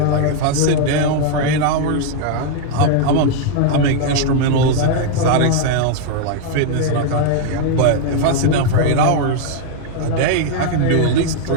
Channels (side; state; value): both; different; correlation 0.00